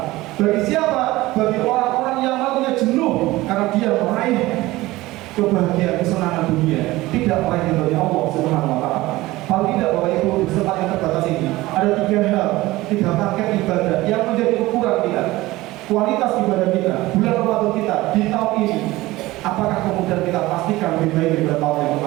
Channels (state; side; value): quieter; left; 18.7 dB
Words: Bagi siapa? Bagi orang-orang yang malamnya jenuh karena dia meraih kebahagiaan kesenangan dunia, tidak meraih ridhonya Allah Subhanahu wa Ta'ala. Kalau tidak, Bapak Ibu, di kesempatan yang terbatas ini ada tiga paket ibadah yang menjadi ukuran kita, kualitas ibadah kita, bulan Ramadan kita di tahun ini. Apakah kemudian kita pastikan lebih baik daripada tahun yang